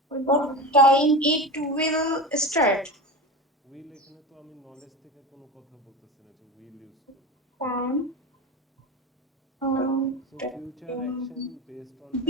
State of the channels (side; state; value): both; normal; correlation 0.26